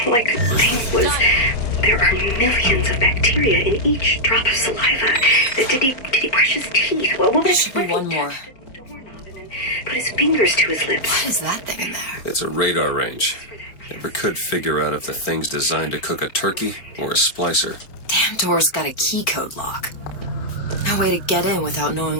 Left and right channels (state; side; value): late; right; 4.3 ms